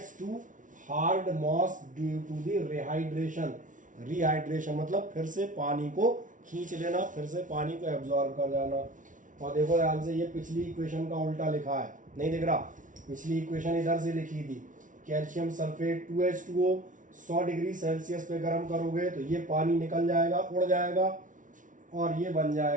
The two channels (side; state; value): left; late; 0.38 ms